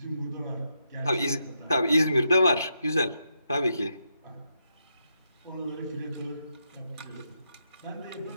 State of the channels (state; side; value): inverted; both; correlation -0.83